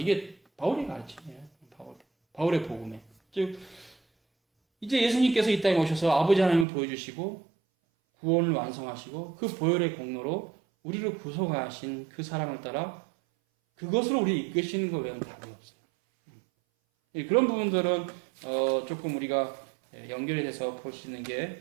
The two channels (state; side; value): drops out; left; at 6.7 s